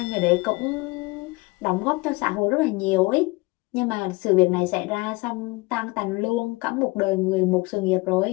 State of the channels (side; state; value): right; quieter; 24.5 dB